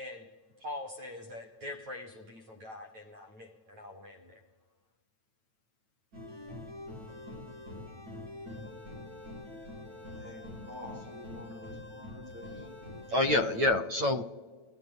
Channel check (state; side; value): late; left; 9.0 ms